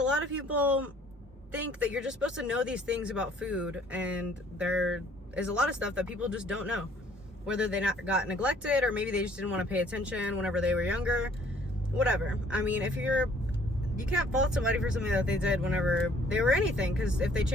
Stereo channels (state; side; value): normal; both; correlation 0.59